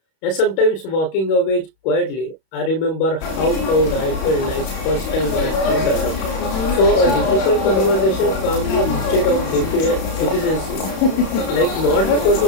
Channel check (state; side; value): late; right; 32 ms